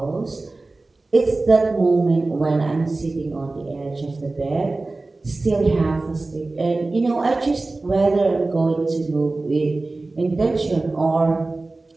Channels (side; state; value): left; quieter; 3.2 dB